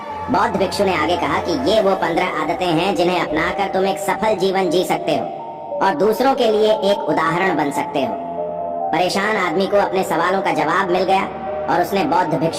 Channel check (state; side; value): identical; both; correlation 1.00